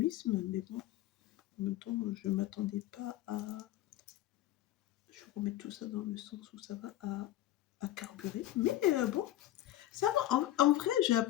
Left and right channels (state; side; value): quieter; right; 14.0 dB